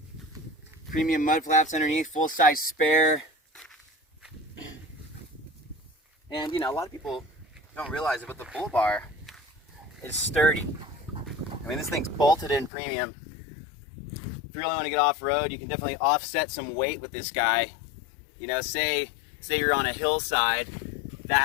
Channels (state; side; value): drops out; right; at 12.7 s